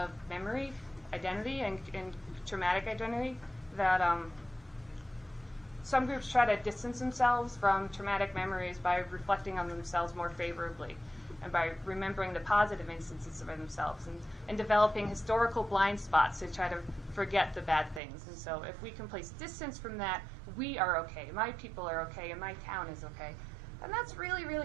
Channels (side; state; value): left; drops out; at 18.0 s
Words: memory, identity, and traumatic identity, that some groups try to distance themselves from traumatic memories by reflecting on themselves more favorably and by remembering the positive instances of themselves and developing historical blind spots to try to forget the bad things. And so if we can place distance from that, we are okay, my people are okay, and my town is okay. And that's really,